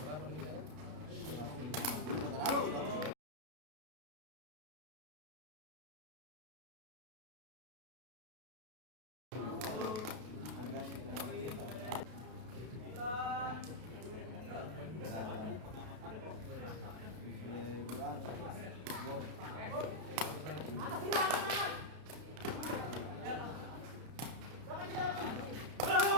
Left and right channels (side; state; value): left; late; 32 ms